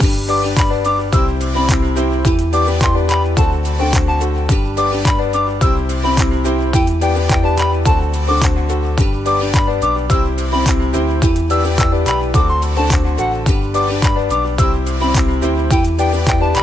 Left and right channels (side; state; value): both; normal; correlation 0.86